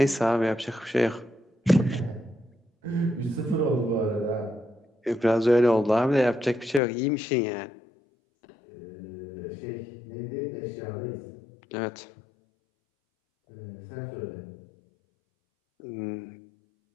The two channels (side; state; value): right; drops out; at 6.8 s